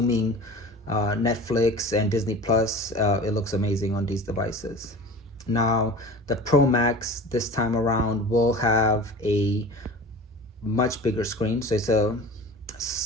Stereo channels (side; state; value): both; normal; correlation 0.38